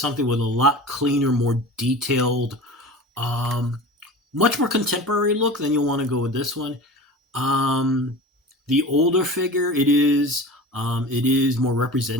with a lot cleaner, more detailed, much more contemporary look, then you'll want to go with this one. The older figure, it is more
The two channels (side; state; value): both; normal; correlation 0.35